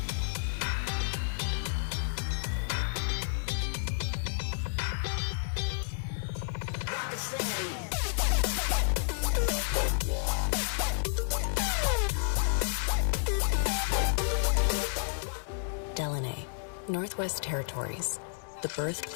Northwest Territories, the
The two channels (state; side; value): silent; right; digital silence